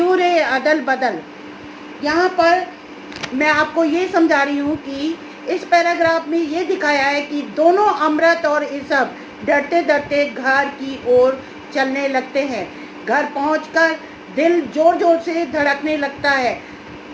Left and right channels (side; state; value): both; identical; correlation 1.00